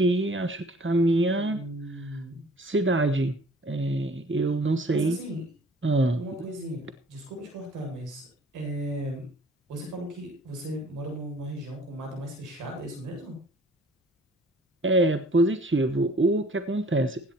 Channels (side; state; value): both; normal; correlation 0.53